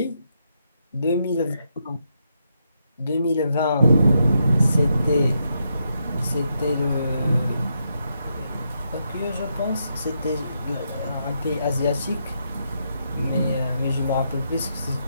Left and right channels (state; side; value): inverted; both; correlation -0.80